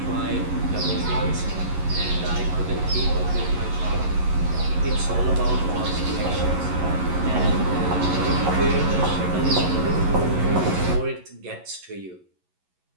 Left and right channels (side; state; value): left; late; 11 ms